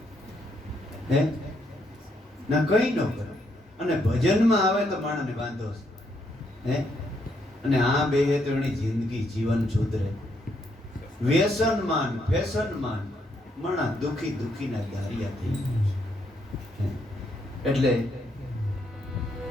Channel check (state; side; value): normal; both; correlation 0.75